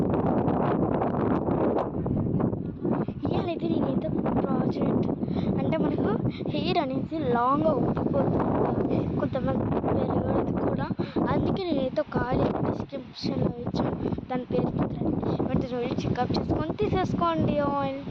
ఇవాళైతే నేనైతే ప్రాజెక్ట్ అంటే మనకు హెయిర్ అనేది లాంగ్గా ఉబ్బిపోతుంది, కొంతమంది పెరగదు కూడా. అందుకే నేనైతే ఒక ఆయిల్ డిస్క్రిప్షన్లో ఇచ్చాను, దాని పేరు వెంటనే వెళ్ళి చెకప్ చేసుకొని తీసేసుకోండి ఆయిల్.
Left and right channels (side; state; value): both; identical; correlation 1.00